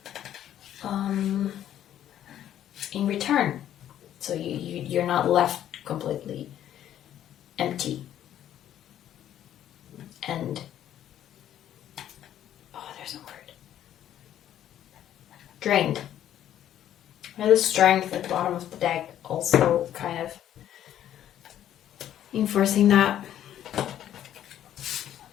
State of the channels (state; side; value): quieter; right; 11.2 dB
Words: in return. So you're not left completely empty. And, there's a word. Drained. And the strength at the bottom of the deck also kind of enforcing that.